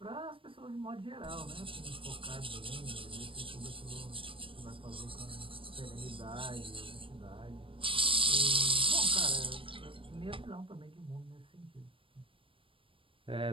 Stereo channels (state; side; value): late; left; 0.25 ms